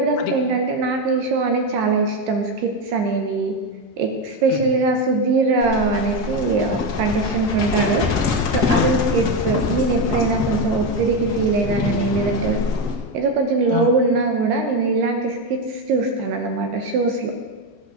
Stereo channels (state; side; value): normal; both; correlation 0.11